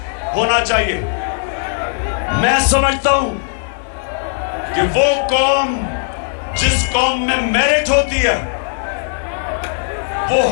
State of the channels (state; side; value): silent; right; digital silence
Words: होना चाहिए। मैं समझता हूं कि वो कौम, जिस कौम में मेरिट होती है, वो